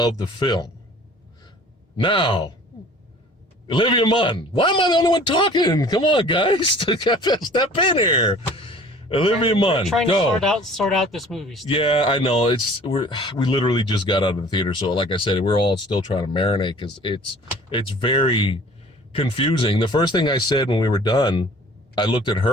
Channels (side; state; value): both; normal; correlation 0.49